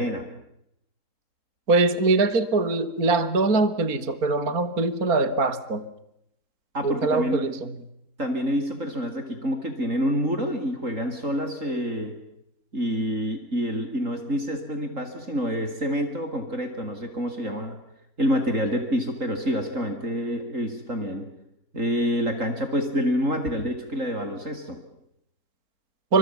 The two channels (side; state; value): left; late; 4.3 ms